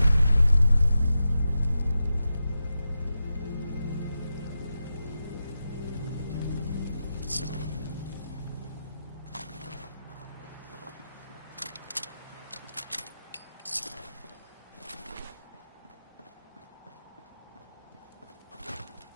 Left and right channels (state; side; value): inverted; both; correlation -0.90